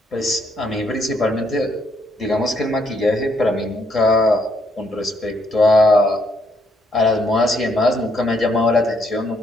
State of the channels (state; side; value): normal; both; correlation 0.72